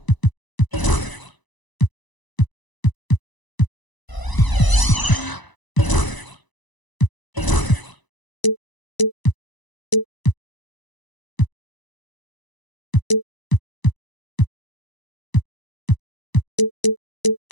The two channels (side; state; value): right; late; 1.0 ms